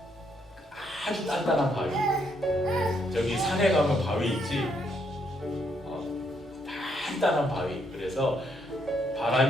아주 단단한 바위. 저기 산에 가면 바위 있지? 단단한 바위. 그래서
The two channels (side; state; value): both; normal; correlation 0.74